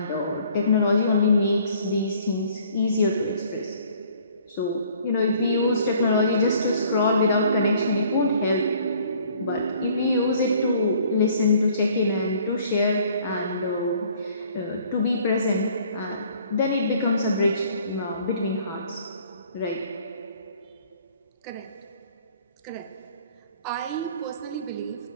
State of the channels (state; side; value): inverted; both; correlation -0.57